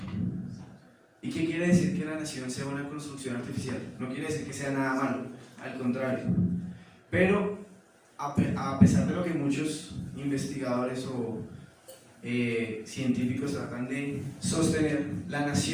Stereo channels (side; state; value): both; identical; correlation 1.00